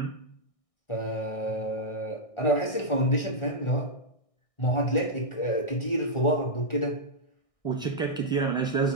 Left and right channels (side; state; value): right; late; 1.6 ms